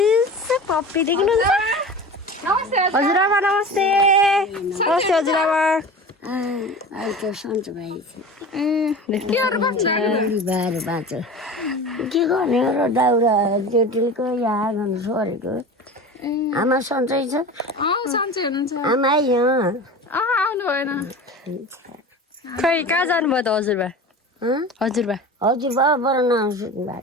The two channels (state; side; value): normal; both; correlation 0.34